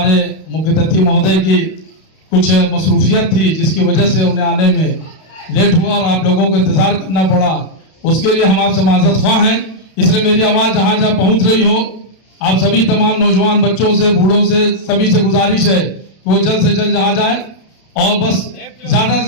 मुख्य अतिथि महोदय की कुछ मसरूफियत थी जिसकी वजह से उन्हें आने में लेट हुआ और आप लोगों को इंतजार करना पड़ा। उसके लिए हम आपसे माजरत ख्वाह हैं। इसलिए मेरी आवाज़ जहाँ जहाँ पहुँच रही हो, आप सभी तमाम नौजवान बच्चों से, बूढ़ों से, सभी से गुजारिश है कि वो जल्द से जल्द जहाँ जाए और बस ज़्यादा से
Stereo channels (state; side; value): late; right; 32 ms